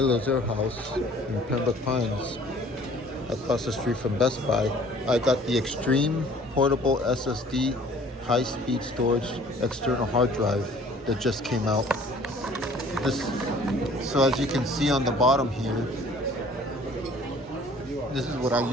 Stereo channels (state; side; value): normal; both; correlation 0.53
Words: Air House in Pembroke Pines, across the street from Best Buy. I got the Extreme portable SSD high-speed storage external hard drive that just came out. So as you can see on the bottom here, this is what I